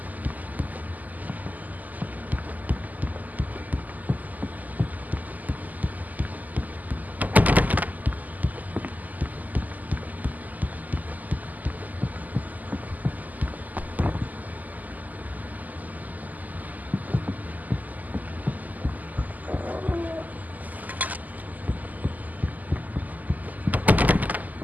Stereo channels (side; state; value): left; late; 0.081 ms